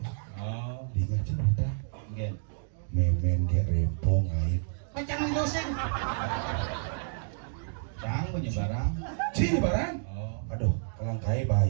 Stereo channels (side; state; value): left; silent; digital silence